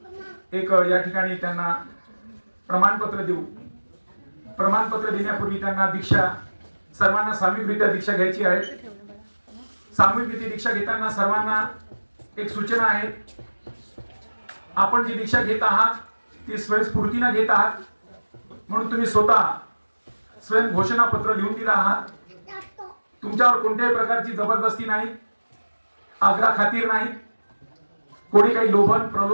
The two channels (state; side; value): inverted; both; correlation -1.00